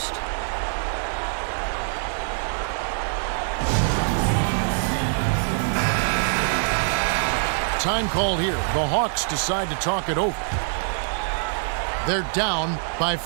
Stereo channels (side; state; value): left; silent; digital silence